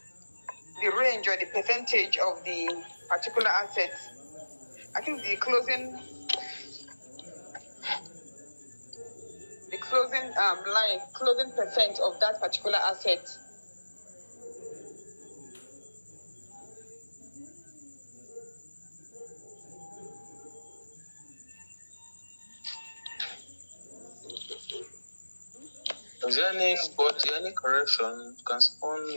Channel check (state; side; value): inverted; both; correlation -1.00